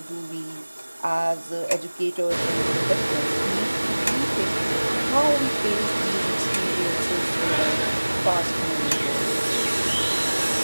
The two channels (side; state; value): both; inverted; correlation -1.00